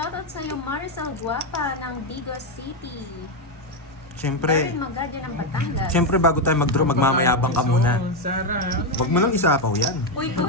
sa'yo, Maricel Guapa ng Digos City. Siyempre, Darren Magalia ng Batangas. siyempre bago tayo mag-draw, magmamayabang ka muna. Sarah. Huwag mo nang isapaw yan. Uy,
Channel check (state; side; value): normal; both; correlation 0.05